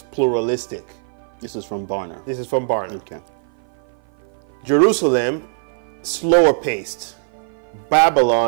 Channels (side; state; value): left; silent; 56 dB below the other